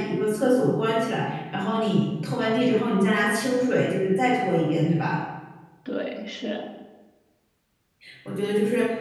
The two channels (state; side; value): identical; both; correlation 1.00